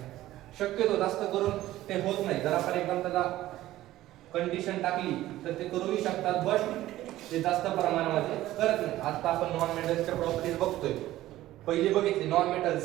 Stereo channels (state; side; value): quieter; left; 15.1 dB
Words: शक्यतो जास्त करून ते होत नाही. जर आपण एकदम त्याला कंडिशन टाकली तर ते करूही शकतात, बट ते जास्त प्रमाणामध्ये करत नाही. आता आपण नॉन मेटल्सच्या प्रॉपर्टीज बघतोय. पहिली बघितली नॉन मेटल